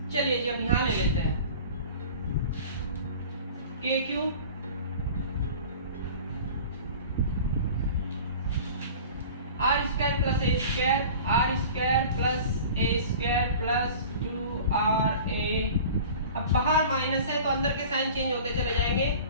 चलिए जी अब यहाँ ले लेते हैं K Q R square plus A square, R square plus A square plus 2ra। अब बाहर माइनस है तो अंदर के साइन चेंज होते चले जाएंगे,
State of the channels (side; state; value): both; inverted; correlation -0.40